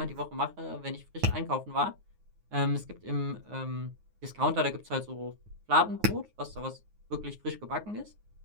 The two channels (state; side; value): late; left; 9.5 ms